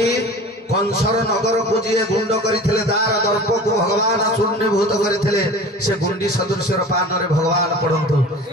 कंसर नगर को जी गुंड करथिले दार दर्प को भगवान चूर्णीभूत करथिले से गुंडी सदृश्य पान रे भगवान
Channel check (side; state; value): both; normal; correlation 0.39